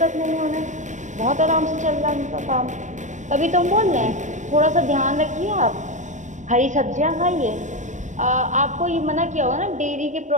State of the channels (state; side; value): late; left; 0.35 ms